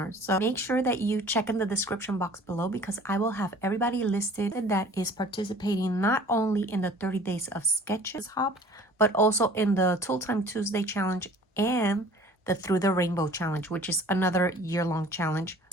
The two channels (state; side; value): normal; both; correlation 0.48